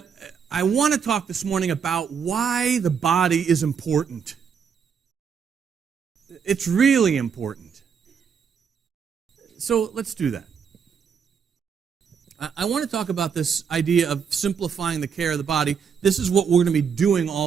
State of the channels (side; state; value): left; quieter; 6.8 dB